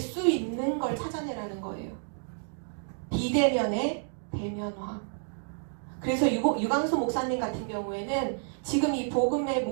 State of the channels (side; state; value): left; silent; digital silence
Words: 있는 걸 찾아내라는 거예요. 비대면의 대면화. 그래서 유광수 목사님 같은 경우에는 지금 이 복음의